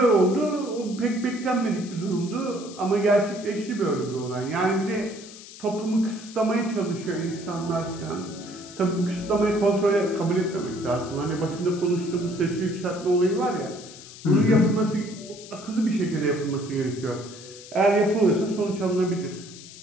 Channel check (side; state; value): left; noise; hiss, 17 dB below the sound